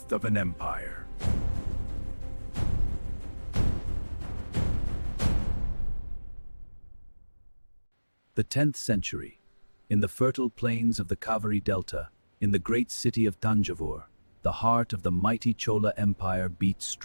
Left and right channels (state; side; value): inverted; both; correlation -1.00